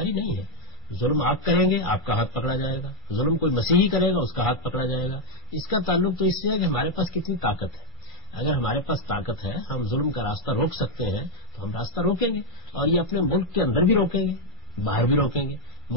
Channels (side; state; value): both; normal; correlation -0.01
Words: نہیں ہے. ظلم آپ کریں گے آپ کا ہاتھ پکڑا جائے گا، ظلم کوئی مسیحی کرے گا اس کا ہاتھ پکڑا جائے گا. اس کا تعلق تو اس سے ہے کہ ہمارے پاس کتنی طاقت ہے. اگر ہمارے پاس طاقت ہے، ہم ظلم کا راستہ روک سکتے ہیں تو ہم راستہ روکیں گے، اور یہ اپنے ملک کے اندر بھی روکیں گے، باہر بھی روکیں گے.